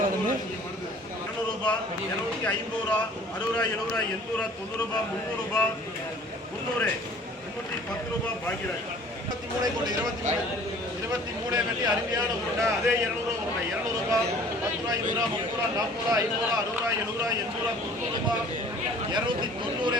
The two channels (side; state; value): both; normal; correlation 0.50